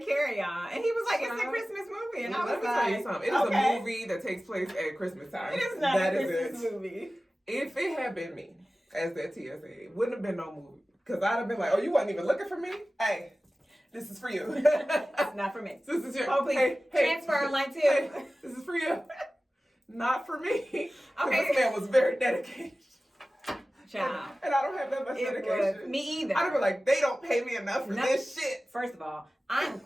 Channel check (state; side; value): normal; both; correlation 0.96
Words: Carry On. And he was like, it's a Christmas movie. And I was let me tell you something. It is a movie that takes place at Christmas time. It is not a Christmas movie. If it had been me as that TSA, it wouldn't have been no movie. Because I'd have been like, oh, you wasn't even looking for me? Hey, this is for you. It's not for me. This is your... Oh, please. Hey, transfer line 2. Hey, this is for you. Not for me. Okay. This man was very dedicated. Child. And I don't have that much dedication. Me either. I'd be like, they don't pay me enough for this shit. First of all, I'm